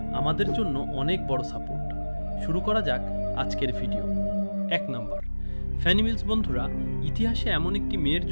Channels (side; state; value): both; inverted; correlation -1.00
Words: আমাদের জন্য অনেক বড় সাপোর্ট। শুরু করা যাক আজকের ভিডিও। 1 নম্বর, ফ্যানি মিলস। বন্ধুরা, ইতিহাসে এমন একটি মেয়ের